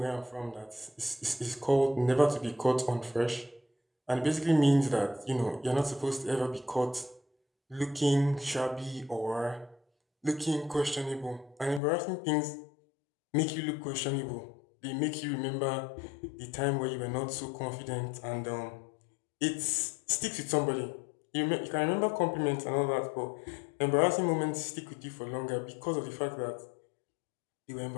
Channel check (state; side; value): drops out; right; at 11.8 s